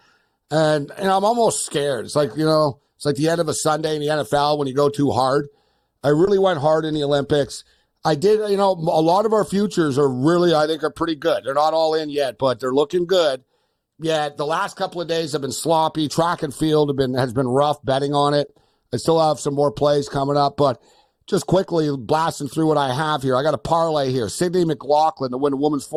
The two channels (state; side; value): identical; both; correlation 1.00